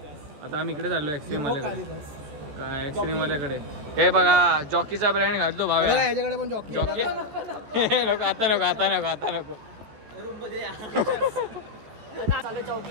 आता आम्ही इकडे चाललो एक्स्ट्रीम वाल्याकडे. काय एक्स्ट्रीम वाल्याकडे. हे बघा जॉकीचा ब्रँड घालतो भाव. याच्याकडे पण जॉकी. नको आता नको. चालू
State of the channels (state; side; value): late; left; 14 ms